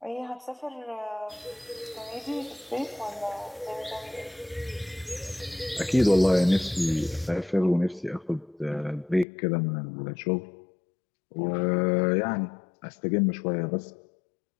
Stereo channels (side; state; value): right; drops out; at 9.2 s